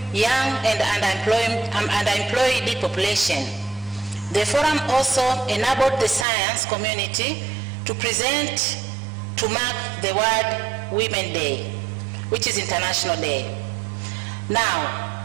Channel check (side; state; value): left; drops out; at 6.2 s